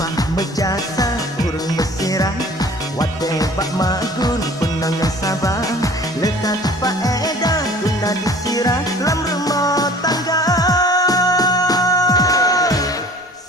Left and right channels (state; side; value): normal; both; correlation 0.48